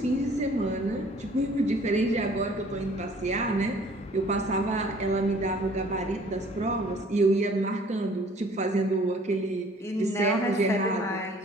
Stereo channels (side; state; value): both; normal; correlation 0.55